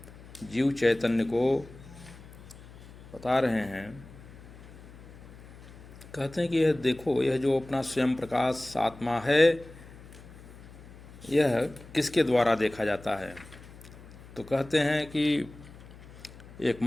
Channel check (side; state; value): left; noise; hum, 18 dB below the sound